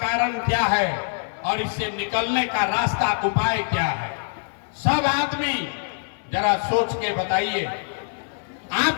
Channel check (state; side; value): silent; right; digital silence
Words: क्या है और इससे निकलने का रास्ता उपाय क्या है। सब आदमी जरा सोच के बताइए,